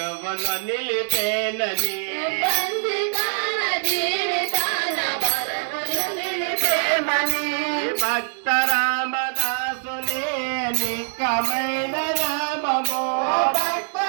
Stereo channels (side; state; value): left; silent; 63 dB below the other